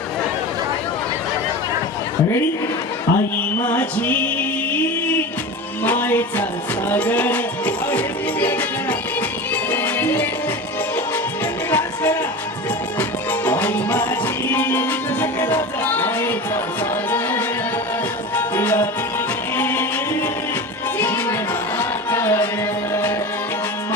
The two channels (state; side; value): normal; both; correlation 0.29